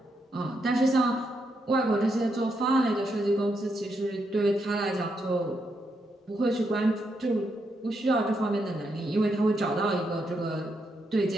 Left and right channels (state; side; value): normal; both; correlation 0.80